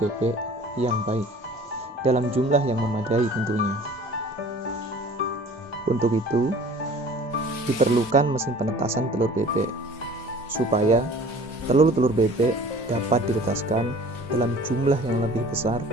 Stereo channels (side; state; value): both; normal; correlation 0.47